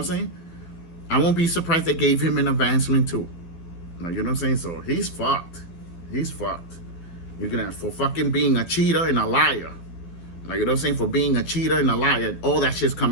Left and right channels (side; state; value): right; late; 12 ms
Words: saying? I won't be surprised they gave him an advancement too. Like, you know what I'm saying? So he's fucked. He's fucked. You're gonna, for fucking being a cheater and a liar. Like, you know what I'm saying? For being a cheater and a liar, all that shit's